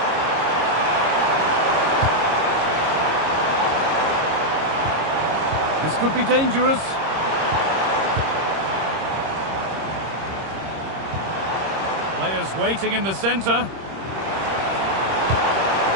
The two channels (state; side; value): late; left; 26 ms